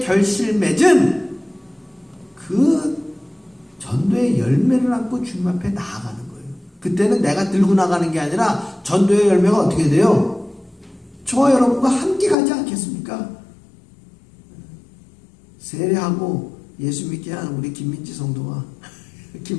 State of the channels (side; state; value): right; drops out; at 12.4 s